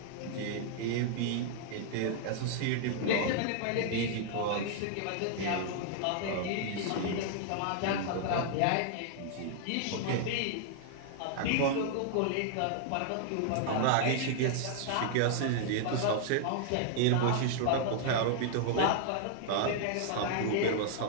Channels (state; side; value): different; both; correlation 0.00